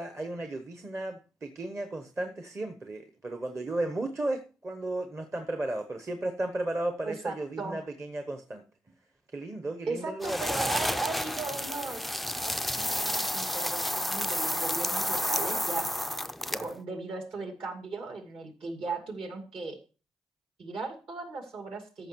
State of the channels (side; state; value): both; normal; correlation 0.88